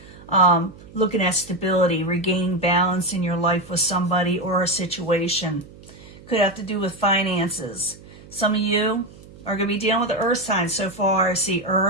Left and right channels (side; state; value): right; noise; hum, 20 dB below the sound